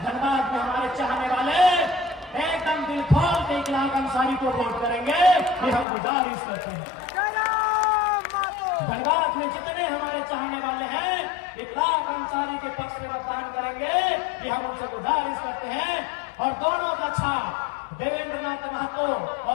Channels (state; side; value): drops out; right; at 5.9 s